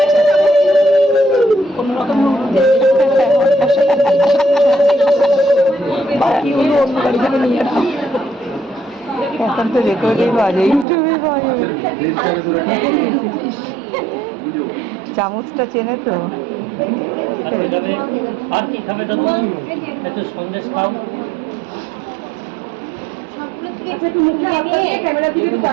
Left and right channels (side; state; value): left; drops out; at 10.9 s